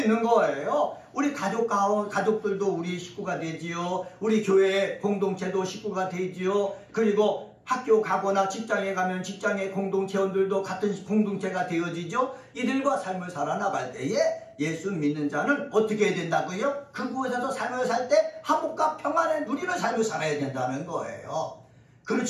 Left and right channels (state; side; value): identical; both; correlation 1.00